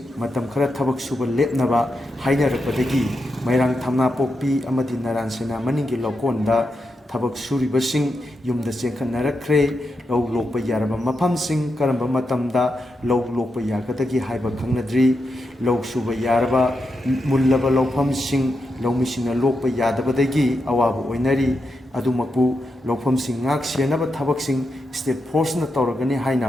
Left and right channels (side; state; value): both; normal; correlation 0.86